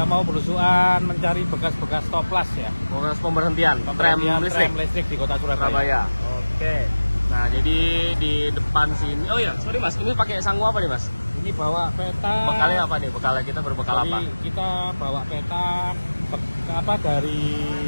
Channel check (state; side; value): inverted; both; correlation -1.00